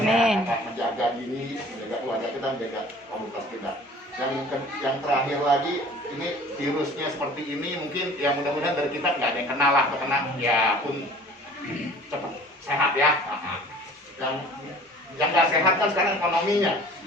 Menjaga diri, menjaga keluarga kita, menjaga komunitas kita. Dan yang terakhir lagi, ini virusnya seperti ini, mungkin ya mudah-mudahan dari kita nggak ada yang kenal lah, kena ya pun cepat sehat ya. Yang nggak sehat kan sekarang ekonominya.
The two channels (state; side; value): normal; both; correlation 0.47